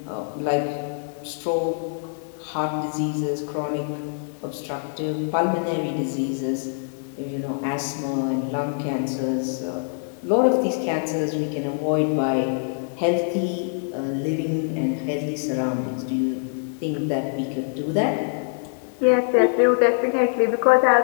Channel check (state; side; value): silent; right; 62 dB below the other